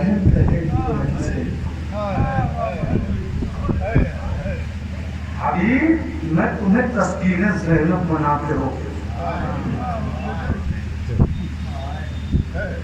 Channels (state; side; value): identical; both; correlation 1.00